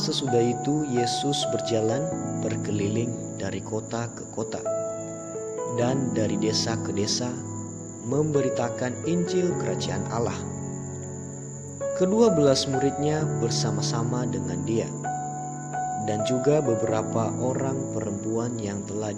sesudah itu Yesus berjalan berkeliling dari kota ke kota dan dari desa ke desa memberitakan Injil Kerajaan Allah. Ke-12 muridnya bersama-sama dengan dia dan juga beberapa orang perempuan yang telah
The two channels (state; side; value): identical; both; correlation 1.00